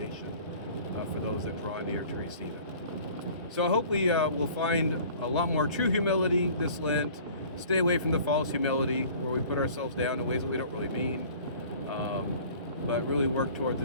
for those that draw near to receive it. So I hope we will find a lot more true humility this Lent. Stay away from the false humility where we put ourselves down in ways that we don't really mean, but really work towards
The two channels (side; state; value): both; inverted; correlation -0.48